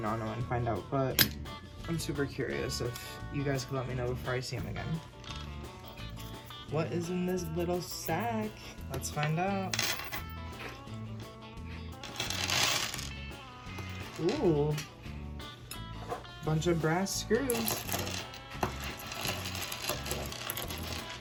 and find out, but I'm super curious if you guys could let me know before I see him again. What is in this little sack? Let's find out. Ooh, bunch of brass screws.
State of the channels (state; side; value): identical; both; correlation 1.00